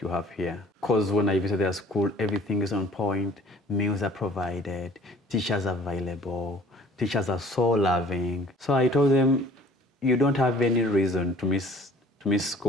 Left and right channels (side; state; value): both; normal; correlation 0.52